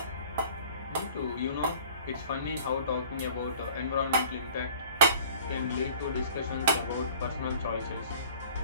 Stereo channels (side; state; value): both; inverted; correlation -0.48